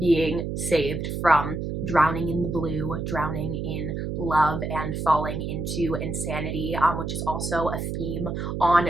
saved from drowning in the blue, drowning in love, and falling into insanity, which is also a theme on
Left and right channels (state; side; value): noise; right; hum, 3 dB below the sound